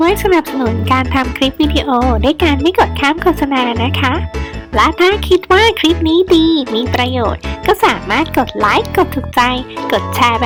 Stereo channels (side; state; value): both; identical; correlation 1.00